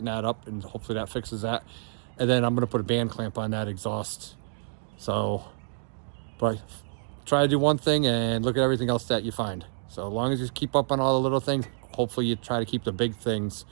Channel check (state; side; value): silent; left; digital silence